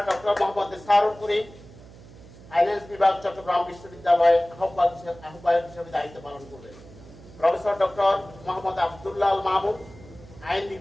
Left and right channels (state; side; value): noise; right; hum, 20 dB below the sound